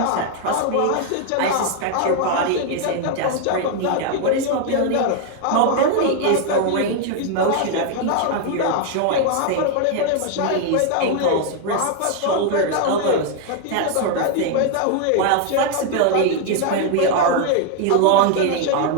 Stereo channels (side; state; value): both; different; correlation 0.00